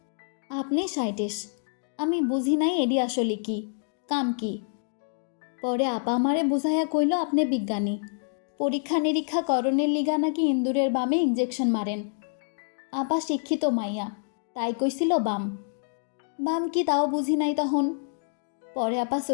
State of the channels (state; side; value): silent; right; digital silence